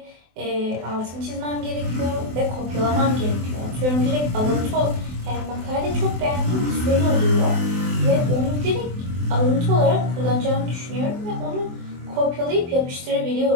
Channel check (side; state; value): left; late; 24 ms